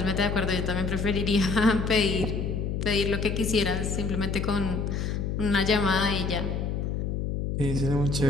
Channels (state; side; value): noise; left; hum, 1 dB below the sound